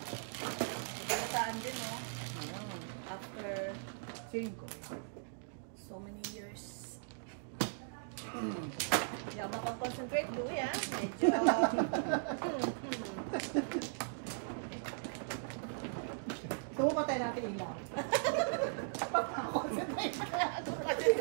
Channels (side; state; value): left; silent; digital silence